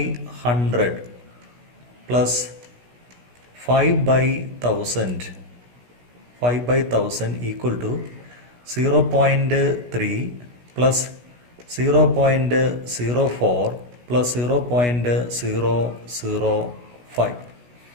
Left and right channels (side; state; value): left; late; 16 ms